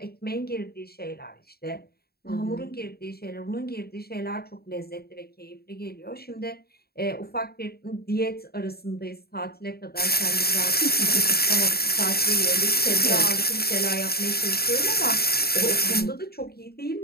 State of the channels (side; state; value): right; late; 0.45 ms